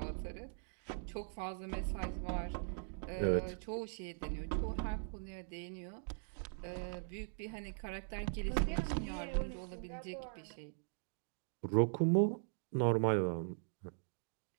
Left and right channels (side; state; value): left; silent; digital silence